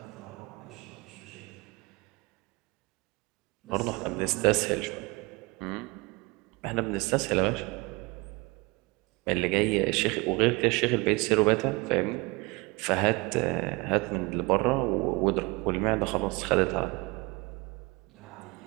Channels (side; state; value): left; quieter; 25.8 dB